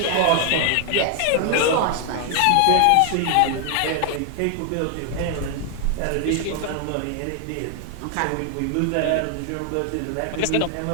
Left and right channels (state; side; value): different; both; correlation 0.00